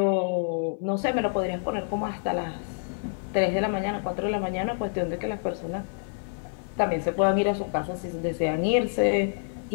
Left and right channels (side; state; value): right; silent; digital silence